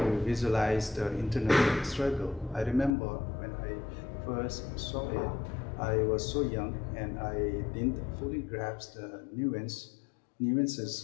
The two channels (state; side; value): drops out; right; at 3.0 s